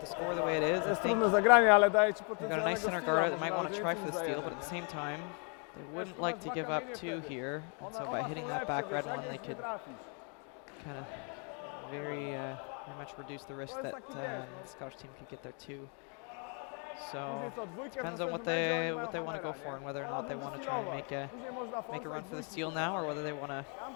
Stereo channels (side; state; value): right; quieter; 39.0 dB